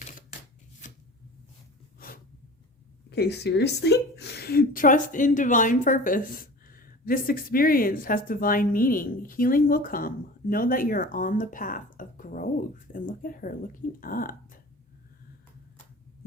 Okay, seriously? Trust in divine purpose. This experience has divine meaning. Healing will come. Know that you're on the path of growth. And look at her looking up.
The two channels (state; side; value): normal; both; correlation 0.38